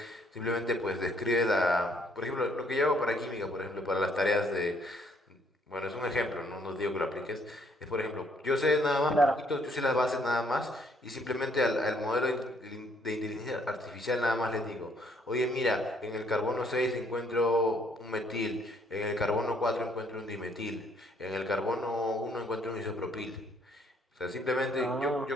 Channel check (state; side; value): normal; both; correlation 0.67